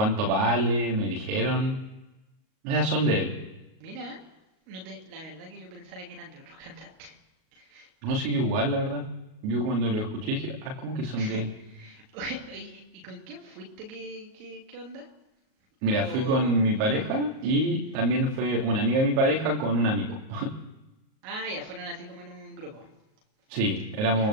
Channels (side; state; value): left; late; 38 ms